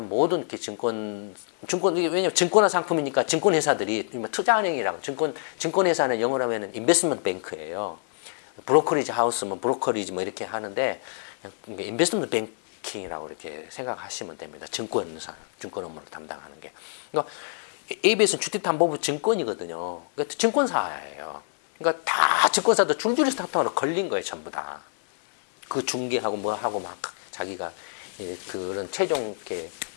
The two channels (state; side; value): silent; right; 61 dB below the other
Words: 모든 이렇게 왜냐면 증권화 상품이니까 증권회사들이 투자은행이랑 증권회사는 영어로 하면 인베스트먼트 뱅크예요. 브로커리지 하우스면 브로커리지 뭐 이렇게 하는데 인베스트먼트 뱅킹이라고 이렇게 생각하시면 됩니다. 증권 업무를 담당하는 게. 그러니까 ABS는 주택담보부 증권이거든요. 그러니까 증권사예요. 그러니까 다 증권사도 줄줄이 스타트업으로 걸린 거예요, 전부 다. 그 중개하고 뭐 하고 막 자기가 그런 최종 이렇게